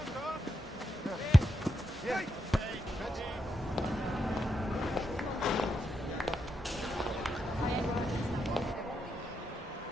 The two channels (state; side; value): normal; both; correlation 0.83